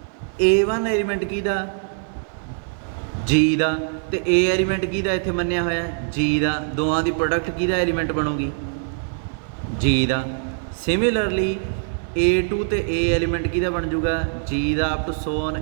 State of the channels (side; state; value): left; silent; 58 dB below the other